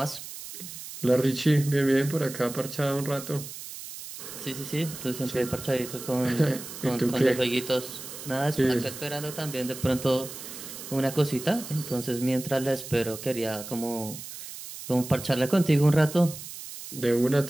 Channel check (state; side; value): noise; right; hiss, 11 dB below the sound